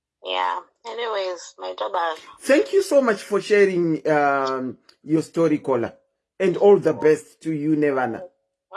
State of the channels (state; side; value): identical; both; correlation 1.00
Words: Yeah. Anyways, my job. Thank you so much for sharing your story, caller. And all the best to you, Nevana. All